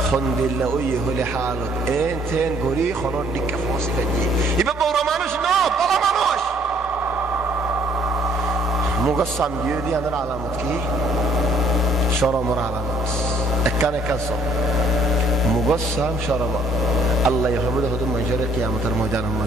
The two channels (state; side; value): normal; both; correlation 0.63